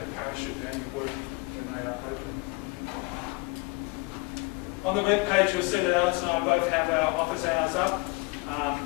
parachute, they only work when they are open. On the web page, you'll see that Alice and I both have our office hours up.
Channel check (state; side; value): quieter; right; 26.2 dB